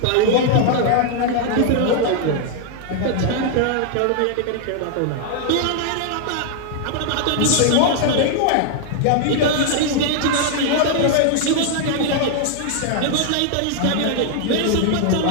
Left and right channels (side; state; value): both; different; correlation 0.00